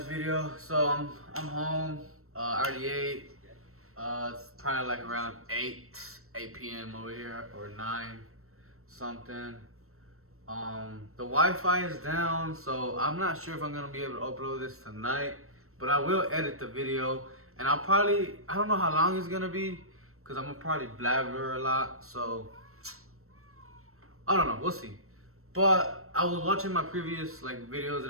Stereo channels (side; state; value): left; late; 0.63 ms